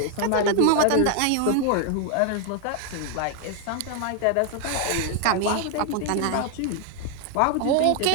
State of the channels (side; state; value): both; different; correlation 0.00